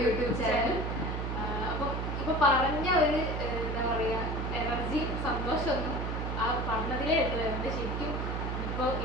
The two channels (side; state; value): right; noise; hum, 2 dB below the sound